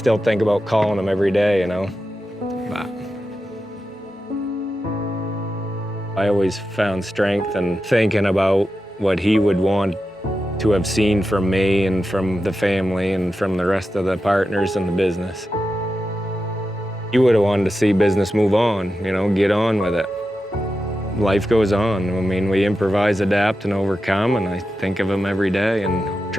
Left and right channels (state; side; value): normal; both; correlation 0.90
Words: think about calling him every day, But I always found strength in thinking about what he would want to have seen from me and from the family and from the rest of the partners in the business. He would have wanted to see business move on, get on with it. Life goes on. I mean, we improvise, adapt, and overcome, and I think of him every day and